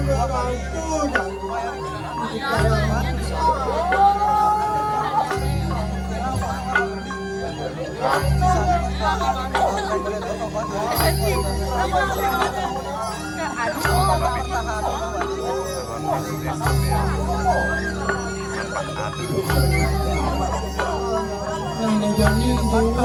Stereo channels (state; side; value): identical; both; correlation 1.00